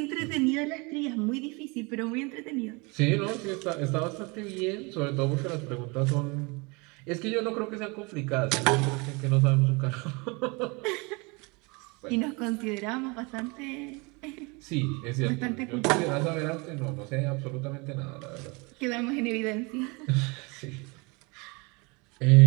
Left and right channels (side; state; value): left; quieter; 28.3 dB